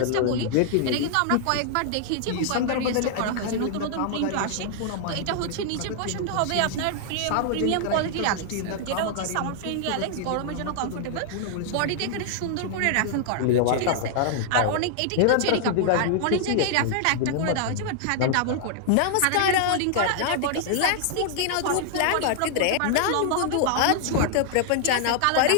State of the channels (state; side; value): different; both; correlation -0.01